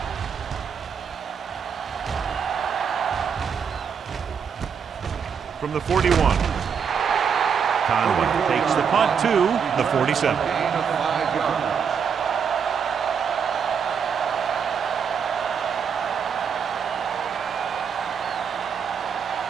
From the 41. Conway takes the punt to the 47. Gain of 5 yards.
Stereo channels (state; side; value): quieter; left; 6.9 dB